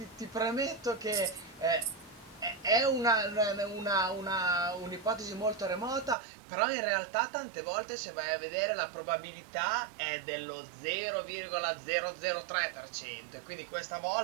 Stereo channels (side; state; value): left; drops out; at 6.2 s